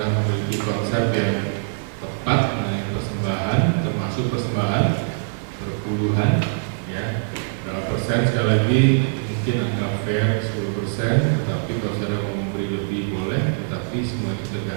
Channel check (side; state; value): left; silent; 58 dB below the other